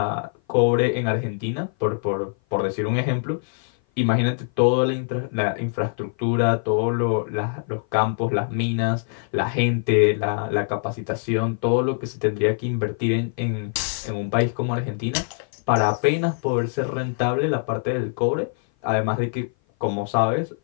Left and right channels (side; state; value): right; silent; 56 dB below the other